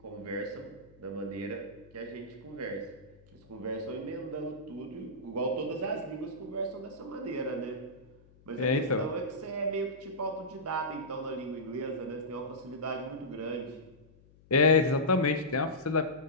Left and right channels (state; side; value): noise; left; hum, 26 dB below the sound